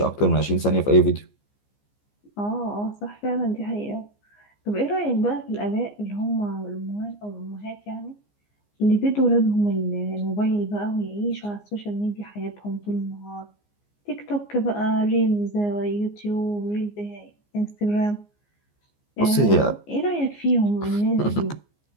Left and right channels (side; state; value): right; late; 14 ms